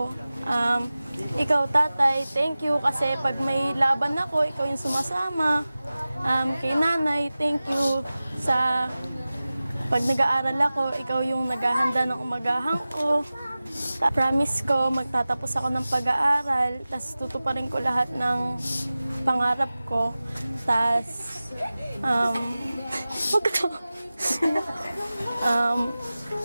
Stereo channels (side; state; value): both; inverted; correlation -0.96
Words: Ikaw tatay, thank you kasi pag may laban ako, ikaw yung sumasama. Kay nanay, thank you sa pag nag-aaral ako, ikaw yung naghahanda ng umagahan ko. Promise ko, magtatapos ako ng pag-aaral, tapos tutuparin ko lahat ng pangarap ko. Tapos,